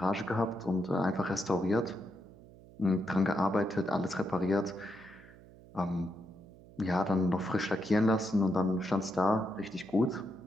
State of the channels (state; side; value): noise; right; hum, 21 dB below the sound